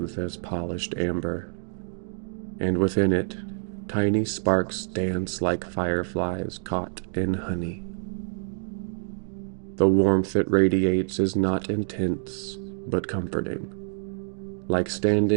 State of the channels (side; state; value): left; silent; digital silence